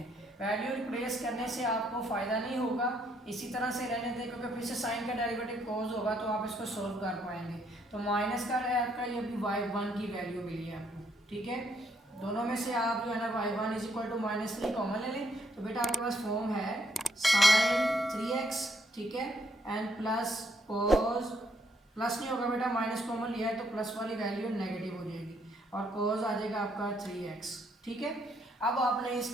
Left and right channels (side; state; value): both; normal; correlation 0.71